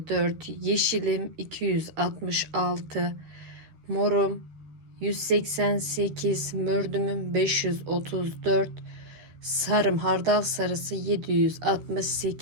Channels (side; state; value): left; late; 13 ms